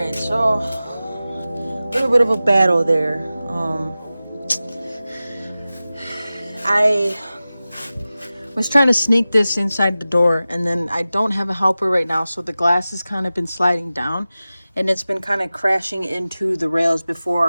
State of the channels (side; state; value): both; inverted; correlation -0.96